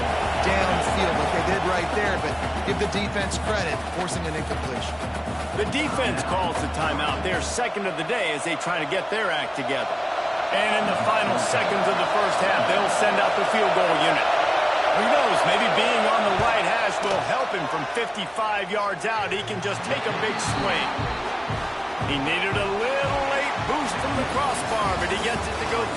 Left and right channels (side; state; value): both; identical; correlation 1.00